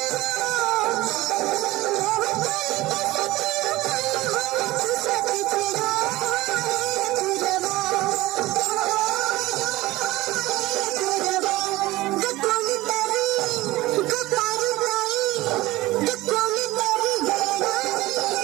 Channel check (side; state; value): left; quieter; 18.6 dB